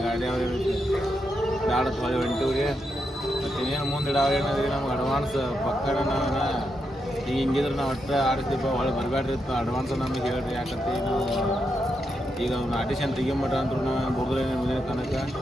ಗಾಡಿ ಅವ್ರು ಏನೈತಿ ಬ್ಯಾಡತ್ ಹೊಳೆ ಹೊಂಟಿವ್ರಿ. ಮತ್ತು ಇನ್ನೇನು ಮುಂದೆ ಅವ್ರು ಏನಾದ್ರಿ ನಮ್ಗೆ ಅಡ್ವಾನ್ಸ್ ಪಕ್ಕನ ನಾವು ಈಗ ಹಿಂಗಿದ್ರೆ ನಾವು ಒಟ್ಟು ಆಡಿಸ್ತೀವಿ ಹೊಳೆ ಬರಬೇಡ್ರಿ ಇತ್ತು ಅಡ್ವಾನ್ಸ್ ನಮಗೆ ಹೇಳ್ರಿ. ಯಾಕಂತ ನಾವು ಈಗ ಅವ್ನು ಆಡಿಷನ್ ತೆಗಿಮಟ್ಟ ಅಂದ್ರು ನಾವು ಬುಡ್ದ್ರೆ ಮುಂದಿನ ತನಕ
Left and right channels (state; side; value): normal; both; correlation 0.84